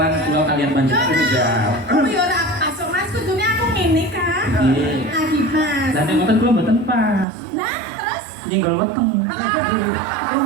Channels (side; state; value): left; drops out; at 7.2 s